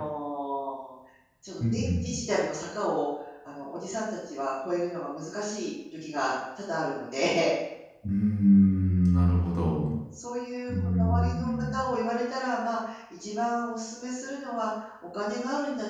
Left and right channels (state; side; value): identical; both; correlation 1.00